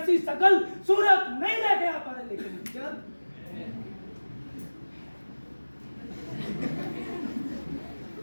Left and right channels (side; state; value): both; inverted; correlation -1.00